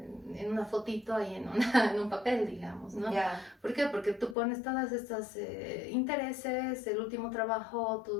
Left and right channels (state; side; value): drops out; right; at 4.4 s